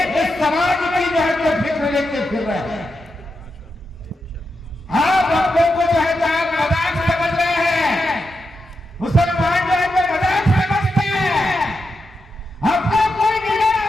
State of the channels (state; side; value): normal; both; correlation 0.87